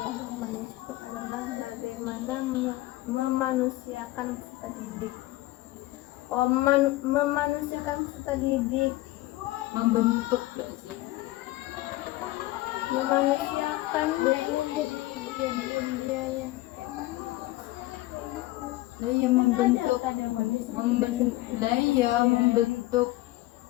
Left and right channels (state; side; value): quieter; right; 18.2 dB